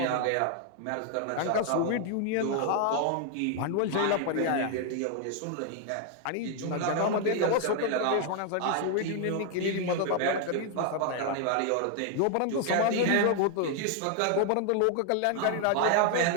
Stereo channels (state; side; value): different; both; correlation 0.00